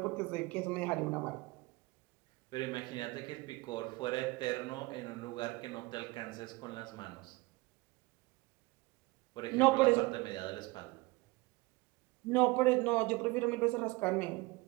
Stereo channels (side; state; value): left; quieter; 23.1 dB